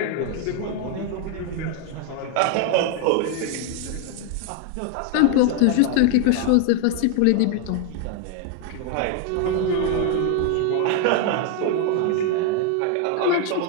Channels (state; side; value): different; both; correlation 0.00